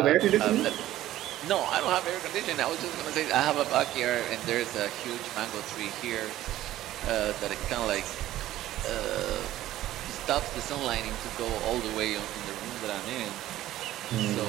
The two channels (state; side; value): quieter; left; 14.3 dB